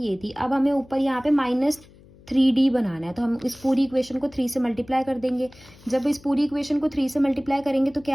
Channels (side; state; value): left; noise; hum, 25 dB below the sound